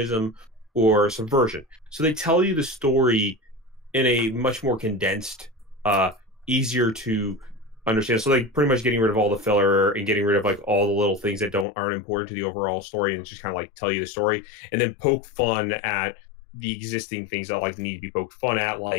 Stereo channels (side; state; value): right; drops out; at 11.7 s